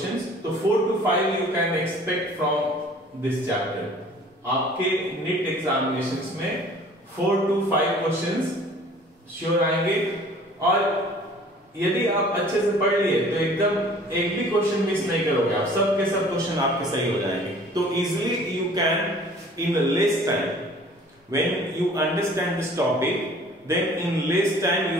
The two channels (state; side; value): normal; both; correlation 0.50